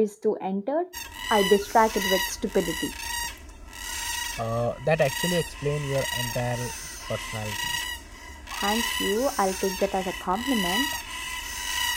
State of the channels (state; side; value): identical; both; correlation 1.00